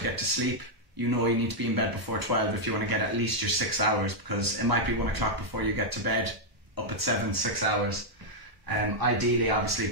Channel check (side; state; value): left; late; 1.1 ms